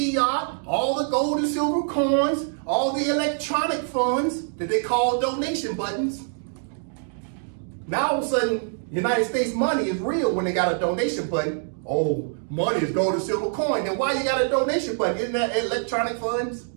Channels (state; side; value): silent; left; 62 dB below the other